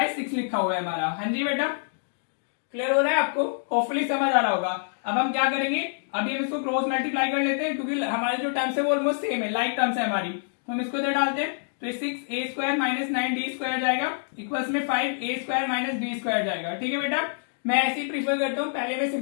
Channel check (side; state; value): right; silent; digital silence